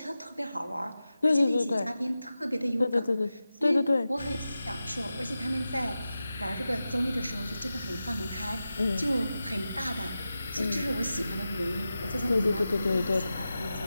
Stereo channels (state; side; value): inverted; both; correlation -0.93